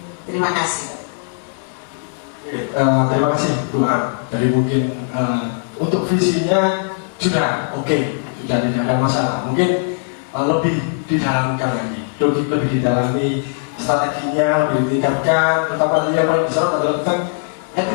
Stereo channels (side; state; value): right; silent; 64 dB below the other